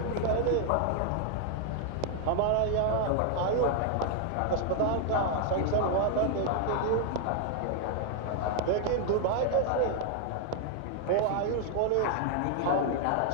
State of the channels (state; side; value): different; both; correlation 0.00